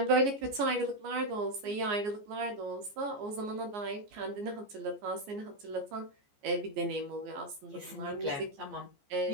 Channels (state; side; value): late; left; 14 ms